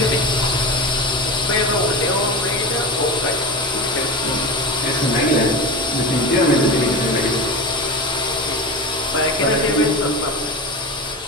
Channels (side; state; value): both; normal; correlation 0.26